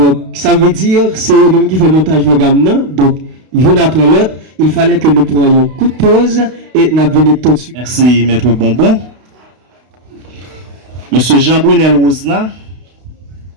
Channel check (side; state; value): left; late; 32 ms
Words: ça veut dire c'est eux-mêmes qui fait montage programme, non? Donc une après l'autre, il fallait que nous prenions coup de pause et nous venions tout de suite. Merci, Maître Bonbon. Monsieur Jean-Brunel Rosna,